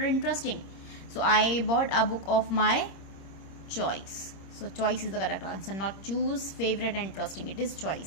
interesting. So I bought a book of my choice. So choice is the correct answer, not choose, favorite, and interesting. It is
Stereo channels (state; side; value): late; right; 26 ms